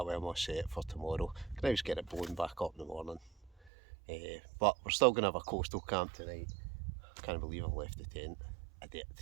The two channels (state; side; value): drops out; left; at 3.7 s